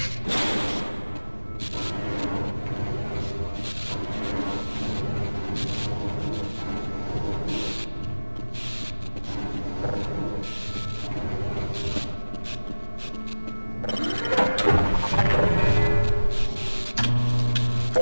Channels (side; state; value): both; inverted; correlation -1.00